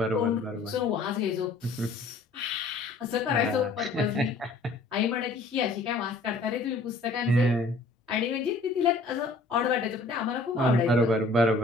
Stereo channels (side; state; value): right; quieter; 3.3 dB